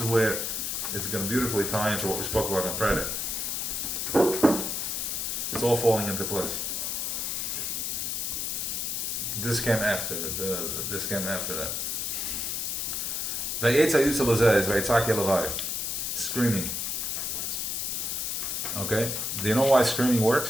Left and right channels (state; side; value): noise; left; hiss, 1 dB below the sound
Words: where it's going to beautifully tie into what we spoke about on Friday. It's all falling into place. This came after that. Screaming. Okay? Do you know why screaming